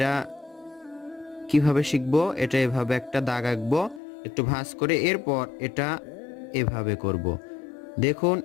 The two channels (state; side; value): drops out; right; at 4.0 s